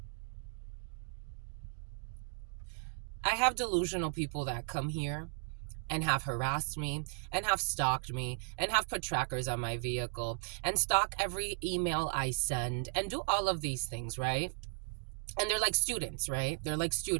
I have delusional people that come here and have harassed me and have stalked me and have put trackers on my vehicle and stalk every email I send and do all of these things, right? And they're like students, right? They're like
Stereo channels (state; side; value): silent; left; 54 dB below the other